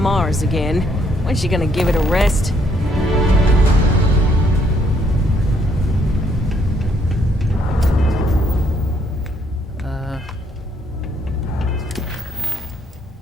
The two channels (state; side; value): normal; both; correlation 0.69